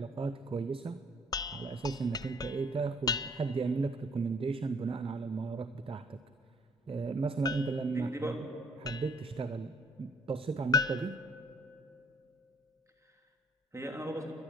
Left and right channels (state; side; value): normal; both; correlation 0.61